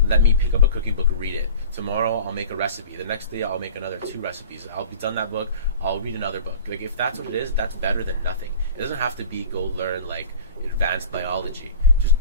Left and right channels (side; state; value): both; inverted; correlation -0.40